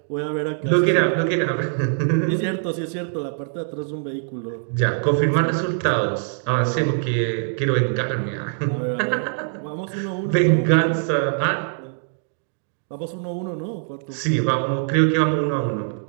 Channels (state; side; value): silent; left; digital silence